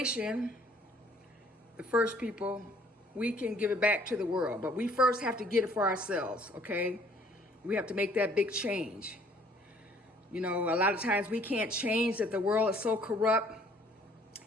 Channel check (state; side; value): normal; both; correlation 0.59